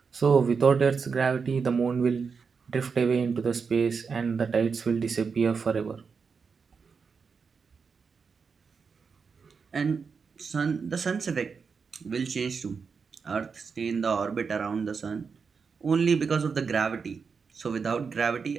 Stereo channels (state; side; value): quieter; left; 5.5 dB